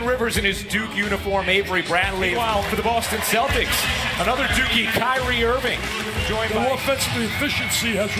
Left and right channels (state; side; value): identical; both; correlation 1.00